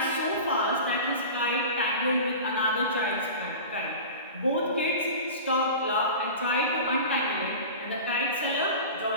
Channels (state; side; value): inverted; both; correlation -0.33